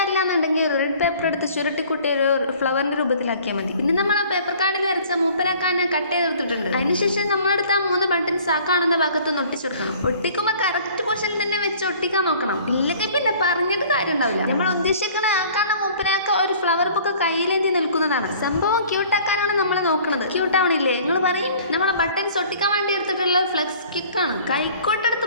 എന്നുണ്ടെങ്കിൽ ഒരു റെഡ് പേപ്പർ എടുത്ത് ചുരുട്ടിക്കുട്ടി ഒരു ഫ്ലവറിന്റെ രൂപത്തിലാക്കിയാൽ മതി. പിന്നെ നമ്മൾ ആ പേപ്പർ കാർഡിൽ വരച്ച മൂപ്പരാക്കാൻ കട്ട് ചെയ്തെടുത്തിട്ടുണ്ട്. അതിനുശേഷം നമ്മളെടുത്ത് ആ 3 ബട്ടൺസ് ആ കാണുന്ന ഭാഗത്ത് ഒട്ടിച്ചെടുക്കണം. ഒട്ടിക്കുമ്പോൾ കറക്റ്റ് പൊസിഷനിൽ തന്നെ വെച്ച് ഒട്ടിക്കാൻ നോക്കണം. ഇല്ലെങ്കിൽ പിന്നെ പറഞ്ഞിട്ട് കാര്യം ഉണ്ടാവില്ല. നമ്മൾ ഉദ്ദേശിക്കുന്ന ആ കാണുന്ന മൂപ്പരാക്ക ഒരു ഫ്ലവർ ബുക്ക് കയ്യിലേന്തി നിൽക്കുന്നതാണ്. സംഭവം ക്യൂട്ടാക്കാനാണ് നമ്മൾ നോക്കുന്നത്. ക്യൂട്ട് ആവണില്ലേ? നിങ്ങൾ പറയും നമ്മളെ ബട്ടൺസ് ഒട്ടിക്കാൻ വേണ്ടി എടുത്തിട്ടുള്ള ഫ്ലെക്സ് കിക്കാണ്. കൈക്കോട്ടെടുത്ത്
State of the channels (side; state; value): both; inverted; correlation -0.51